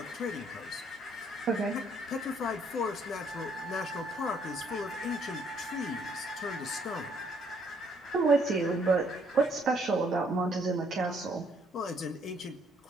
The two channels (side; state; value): both; normal; correlation 0.67